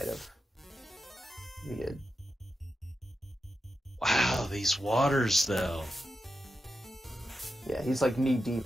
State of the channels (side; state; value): both; normal; correlation 0.89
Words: have. He did. Wow, these waters though. Yeah, he's like knee